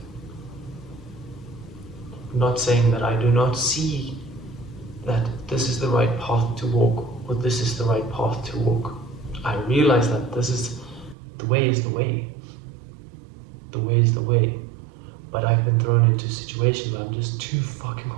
I'm not saying that I do not see that this is the right path to walk, or this is the right path to walk. I realize that this is the way is the way. The way is the way. But I've been thrown into situations where I'm just too fucking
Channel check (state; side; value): drops out; left; at 11.2 s